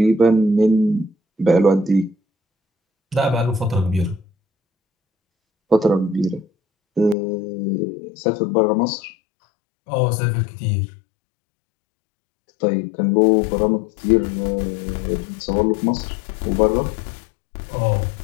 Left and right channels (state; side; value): drops out; right; at 7.2 s